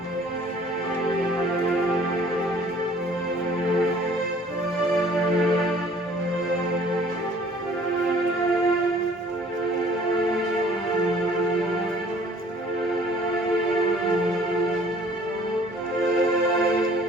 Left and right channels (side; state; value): both; normal; correlation 0.54